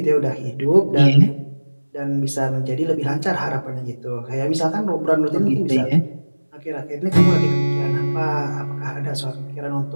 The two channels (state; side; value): inverted; both; correlation -1.00